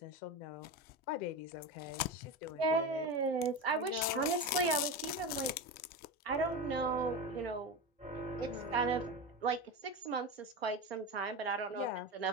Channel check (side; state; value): both; normal; correlation 0.21